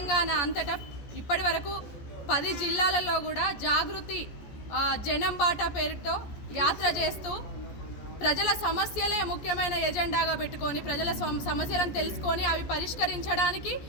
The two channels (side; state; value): right; late; 14 ms